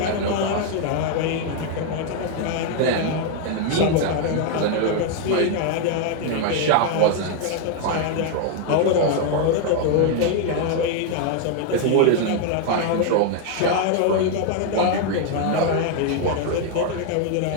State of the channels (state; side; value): different; both; correlation 0.00